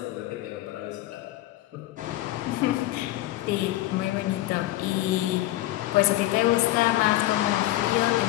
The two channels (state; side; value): quieter; right; 16.2 dB